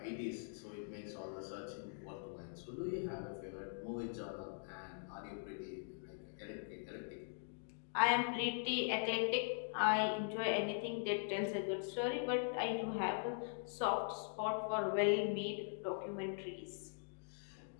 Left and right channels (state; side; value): silent; right; digital silence